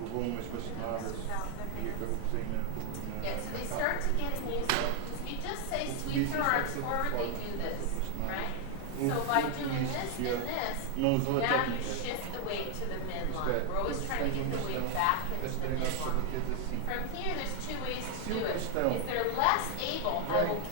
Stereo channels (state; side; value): different; both; correlation 0.00